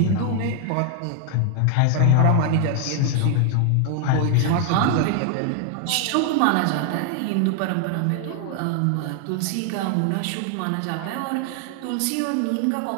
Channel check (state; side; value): different; both; correlation 0.00